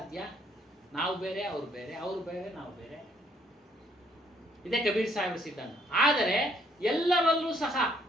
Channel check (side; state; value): both; normal; correlation 0.66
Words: ನಾವು ಬೇರೆ, ಅವ್ರು ಬೇರೆ, ಅವ್ರು ಬೇರೆ, ನಾವು ಬೇರೆ. ಇದೇ ಕಬೀರ್ ಸಾಹೇಬ್ರ ಸಿದ್ಧಾಂತ. ಆದರೆ ಎಲ್ಲರಲ್ಲೂ ಸಹ